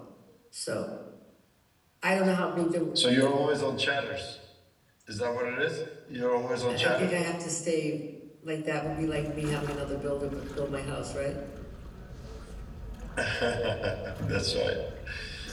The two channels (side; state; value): both; identical; correlation 1.00